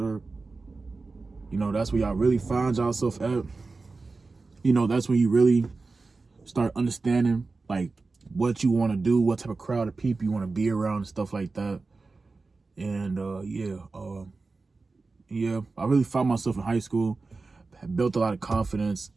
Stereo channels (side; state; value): left; quieter; 3.8 dB